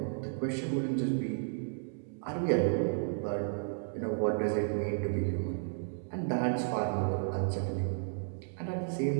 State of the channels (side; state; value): left; silent; digital silence